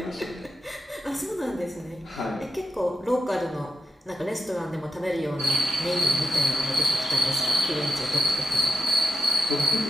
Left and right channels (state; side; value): normal; both; correlation 0.87